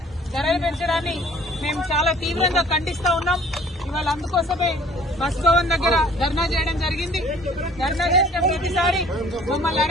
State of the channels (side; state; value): both; normal; correlation 0.53